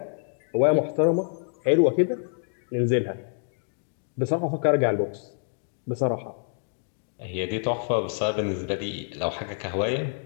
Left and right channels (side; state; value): right; silent; digital silence